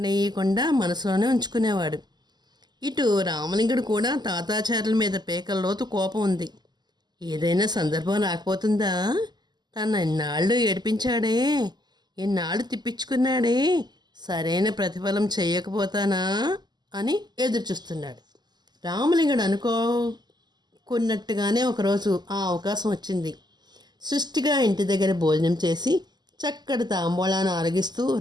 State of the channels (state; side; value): late; left; 0.21 ms